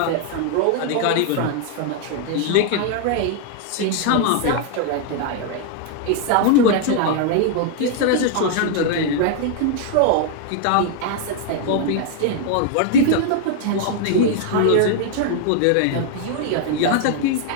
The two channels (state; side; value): different; both; correlation 0.00